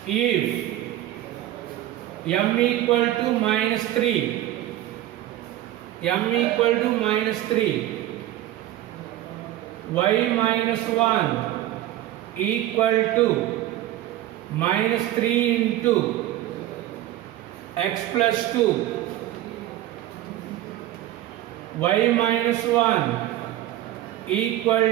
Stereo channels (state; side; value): quieter; left; 13.9 dB